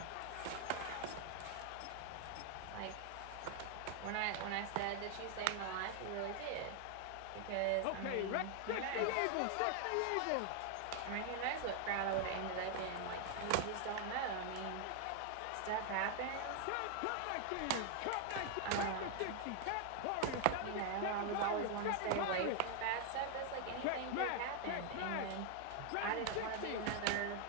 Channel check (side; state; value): both; different; correlation 0.00